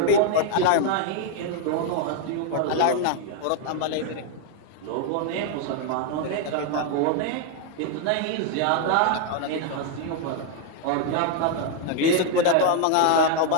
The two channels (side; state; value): both; different; correlation 0.00